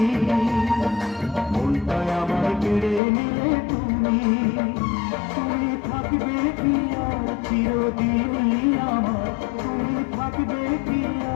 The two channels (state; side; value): drops out; right; at 3.0 s